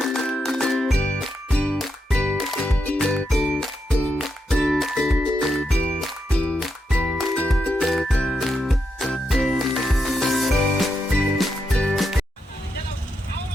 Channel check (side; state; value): both; normal; correlation 0.83